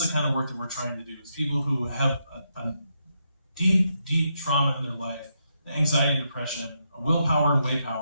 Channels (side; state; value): both; inverted; correlation -0.81